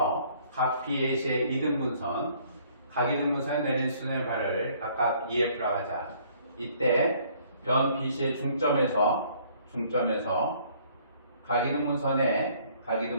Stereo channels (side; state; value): both; inverted; correlation -0.60